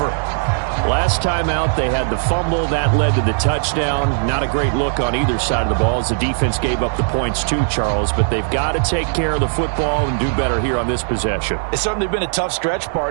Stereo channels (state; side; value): silent; left; digital silence